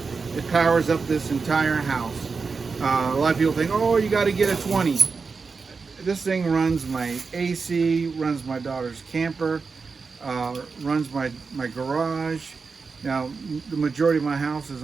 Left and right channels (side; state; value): left; quieter; 4.8 dB